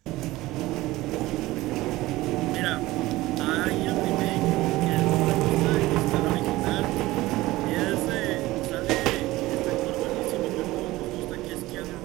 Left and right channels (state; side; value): quieter; left; 18.3 dB